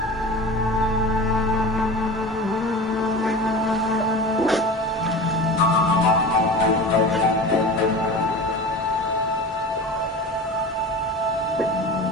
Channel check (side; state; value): both; normal; correlation 0.33